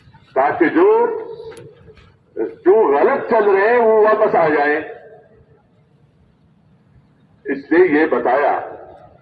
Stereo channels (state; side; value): identical; both; correlation 1.00